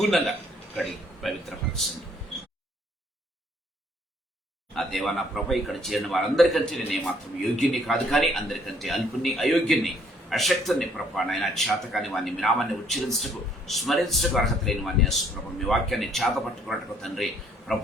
కడిగి పవిత్రపరచండి. ఆ దేవా, నా ప్రభ ఇక్కడ చేరిన వారందరికంటే నేను ఏమాత్రం యోగ్యుని కాదు, కానీ అందరికంటే అల్పుని, అయోగ్యుని, అశక్తుని ప్రభ నాయన. చేతకాని వాడిని మీ నామాన్ని ఉచ్చరించటకు స్మరించటకు అర్హత లేని వాడిని యేసు ప్రభ మీ వాక్యాన్ని చేత పట్టుకున్నట్టుకు తండ్రి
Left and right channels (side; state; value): both; normal; correlation 0.64